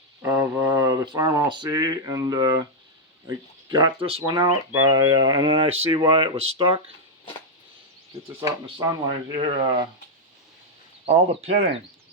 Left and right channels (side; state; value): both; normal; correlation -0.02